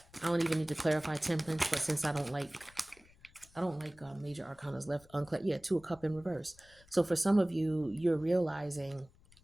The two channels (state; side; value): noise; left; rumble, 27 dB below the sound